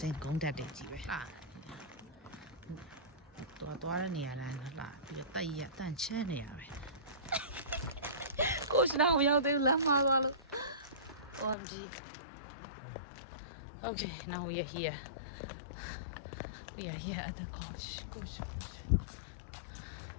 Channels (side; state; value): right; drops out; at 11.6 s